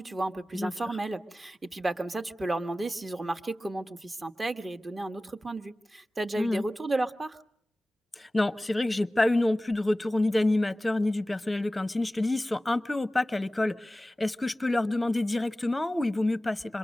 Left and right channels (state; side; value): normal; both; correlation 0.97